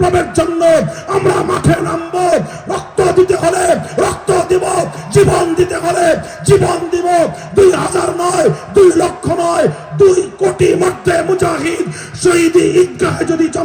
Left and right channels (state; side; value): identical; both; correlation 1.00